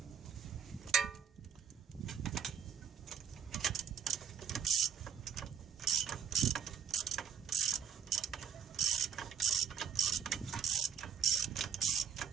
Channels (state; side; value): quieter; left; 7.5 dB